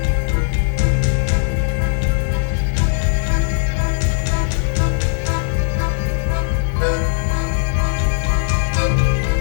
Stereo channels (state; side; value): silent; right; digital silence